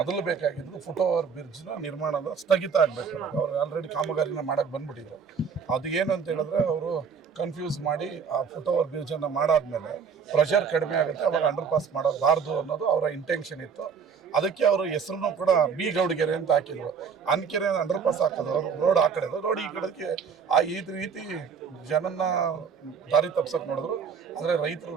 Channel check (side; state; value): left; quieter; 6.2 dB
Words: ಬೇಕಾಗಿದ್ದು ಫುಟ್ ಓವರ್ ಬ್ರಿಡ್ಜ್ನ ನಿರ್ಮಾಣದ ಸ್ಥಗಿತ ಆಗಬೇಕು. ಅವ್ರು ಆಲ್ರೆಡಿ ಕಾಮಗಾರಿನ ಮಾಡಕ್ಕೆ ಬಂದ್ಬಿಟ್ಟಿದ್ರು. ಅದು ಏನು ಅಂತ ಹೇಳಿದ್ರೆ ಅವರು ಕನ್ಫ್ಯೂಸ್ ಮಾಡಿ ಆ ಫುಟ್ ಓವರ್ ಬ್ರಿಡ್ಜನ್ನು ಮಾಡಾದ್ಮೇಲೆ ಪ್ರೆಷರ್ ಕಡಿಮೆ ಆಗುತ್ತೆ, ಅವಾಗ ಅಂಡರ್ ಪಾಸ್ ಮಾಡಬಾರ್ದು ಅನ್ನೋದು ಅವರ ಇಂಟೆನ್ಷನ್ ಇತ್ತು. ಅದಕ್ಕೆ ಅವರು ಹೆಸರನ್ನು ಕೂಡ ಬಿ ಗೌಡಗೆರೆ ಅಂತ ಹಾಕಿದ್ರು. ಅನ್ಕೆರೆ ಅಂಡರ್ ಪಾಸ್ ಹಾಕೋದು, ರೋಡ್ ಆ ಕಡೆದು, ರೋಡ್ ಈ ಕಡೆಗೆ ಈ ರೀತಿ ಜನನ್ನ ದಾರಿ ತಪ್ಸಕ್ಕೆ ನೋಡಿದ್ರು. ಆದರೆ ರೈತರು